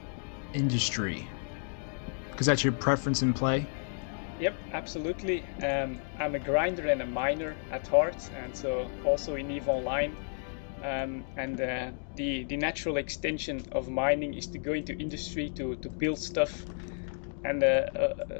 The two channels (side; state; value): right; silent; 57 dB below the other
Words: industry, because that's your preference in play. Yep, absolutely. I'm a grinder and a miner at heart, and so also in EVE Online. The natural extension of mining is to go into industry to build stuff. And